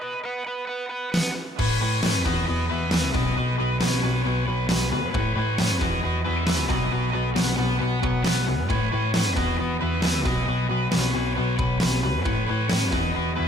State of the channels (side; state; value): both; normal; correlation 0.68